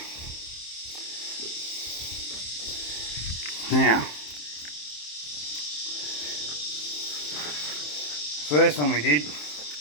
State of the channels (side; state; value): right; late; 27 ms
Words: Now, first one we did,